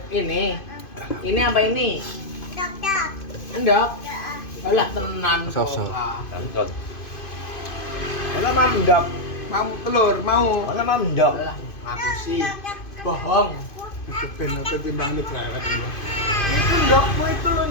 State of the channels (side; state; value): right; late; 2.5 ms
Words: Ini apa ini? Endok. Alah tenan kok. Sop. Tonton. Mana mandok? Mau telur, mau. Mana mandok? Alah, aku sih bohong. Ben apa timbang ini berangkat ini. Itu endokmu.